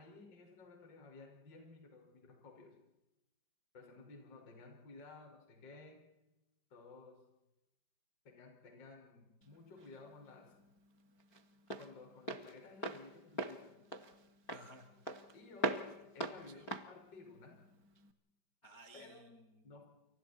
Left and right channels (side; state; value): right; late; 5.1 ms